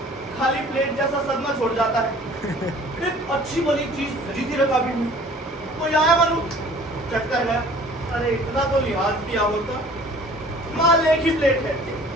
खाली प्लेट जैसा सदमा छोड़ जाता है। एक अच्छी भली चीज सजी थी रखा भी नहीं, कोई आया मालूम चट कर गया। अरे इतना तो लिहाज किया होता, माल एक ही प्लेट है।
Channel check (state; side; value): normal; both; correlation 0.50